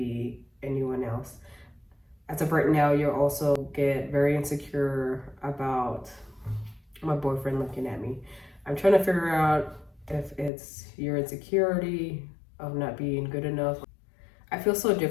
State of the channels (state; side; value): drops out; right; at 10.5 s